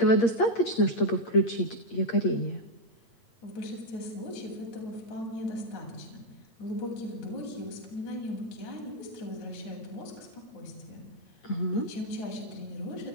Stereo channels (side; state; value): right; late; 8.7 ms